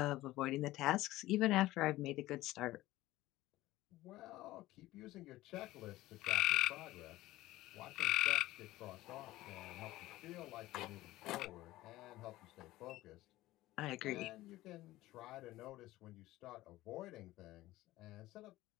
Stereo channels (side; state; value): right; quieter; 17.0 dB